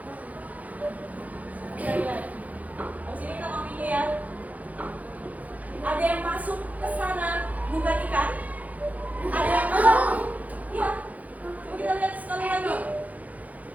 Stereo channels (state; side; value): late; left; 0.075 ms